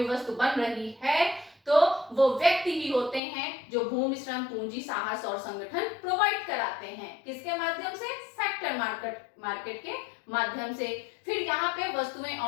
वस्तु बन रही है तो वो व्यक्ति ही होते हैं जो भूमि, श्रम, पूंजी, साहस और संगठन प्रोवाइड कराते हैं। किसके माध्यम से? फैक्टर मार्केट के माध्यम से। फिर यहाँ पे वस्तुएं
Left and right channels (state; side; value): drops out; right; at 3.2 s